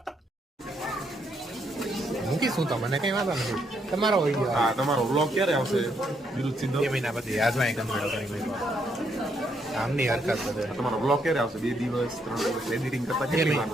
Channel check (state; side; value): normal; both; correlation 0.75